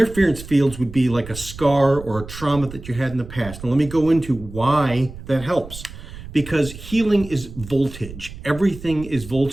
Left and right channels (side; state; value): right; noise; rumble, 14 dB below the sound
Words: fields would be like a scar or a trauma that you had in the past. Now let me go into why that helps. Because healing is voltage. Everything is